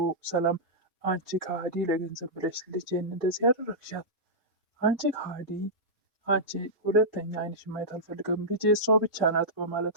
ሰላም አንቺ ከሃዲ፣ ለገንዘብ ብለሽ ልጄን እንደዚህ ያደረግሻት፣ አንቺ ከሃዲ፣ አንቺ ሁለተኛ አይንሽ ማየት አልፈልግም፣ ልጄ እሷ ብቻ ናት በማለት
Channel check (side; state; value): both; normal; correlation -0.13